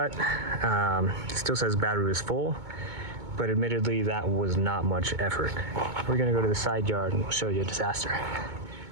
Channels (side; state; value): left; late; 2.2 ms